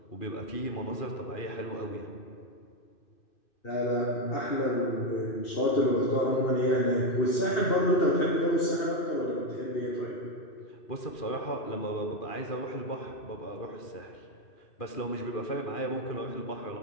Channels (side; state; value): right; late; 2.6 ms